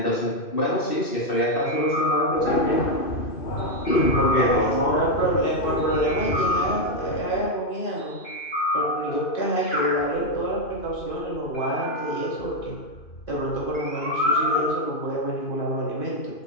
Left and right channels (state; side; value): late; right; 2.5 ms